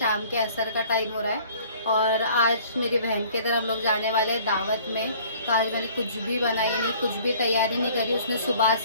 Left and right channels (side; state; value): both; inverted; correlation -0.53